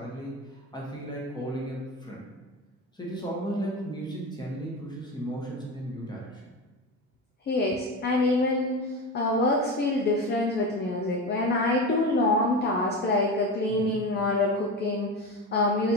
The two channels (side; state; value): both; normal; correlation 0.23